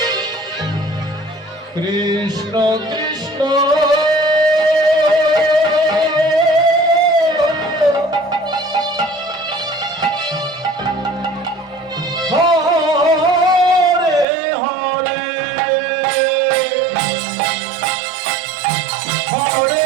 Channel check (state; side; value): drops out; left; at 14.2 s